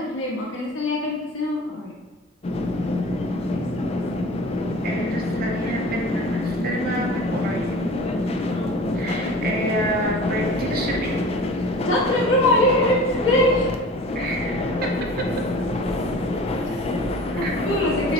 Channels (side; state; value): both; normal; correlation 0.40